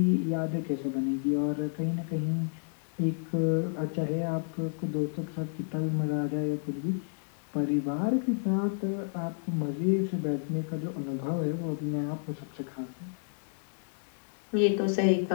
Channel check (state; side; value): silent; right; digital silence